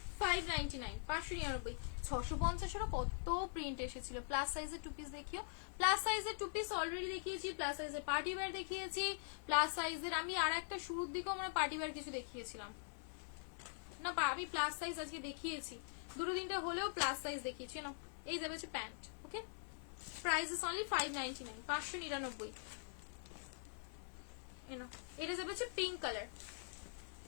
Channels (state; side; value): silent; right; digital silence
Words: 599, 599, 650 কত প্রিন্ট এসেছিল। প্লাস সাইজের টু পিস দেখিও, প্লাস সাইজের টু পিস অলরেডি দেখিয়েছি, প্লাস সাইজের পার্টি ওয়্যার দেখিয়েছি, প্লাস সাইজের আমি আর একটা শুরুর দিকেও আমরা পার্টি ওয়্যার কিছু দেখিয়েছিলাম না, আমি প্লাস সাইজ আজকে দেখিয়েছি, দুটো তিনটা হলেও প্লাস সাইজ দেখিয়েছি না। এই যাবে হচ্ছে pant, okay? Price is only 599, 599। এটা যাবে হচ্ছে pink colour,